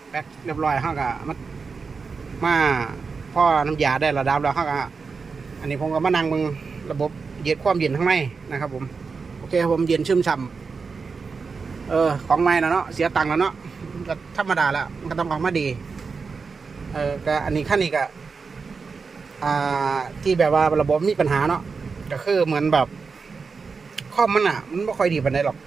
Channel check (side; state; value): left; quieter; 4.9 dB